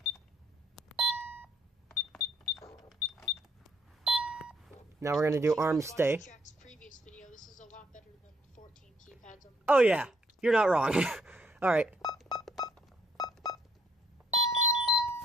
Now we're going to do arm stay. Jack's previous video, this is a lot better than 14 keypads on the Oh yeah, you're not wrong. Alright.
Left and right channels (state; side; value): normal; both; correlation 0.69